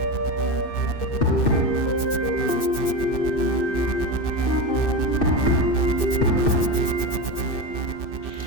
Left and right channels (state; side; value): late; right; 2.6 ms